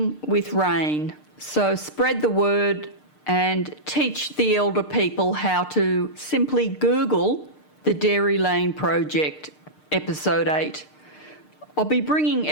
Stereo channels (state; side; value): late; right; 6.6 ms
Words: with rain. So spread the word and teach the elder people how to simply Google the Dairy Lane Project, episode 8. I'll be bringing